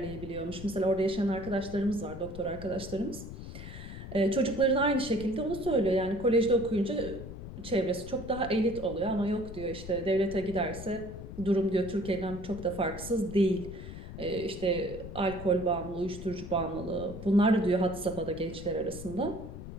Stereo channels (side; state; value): left; noise; rumble, 11 dB below the sound